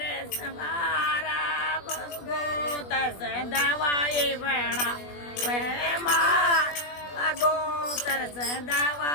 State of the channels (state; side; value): late; right; 21 ms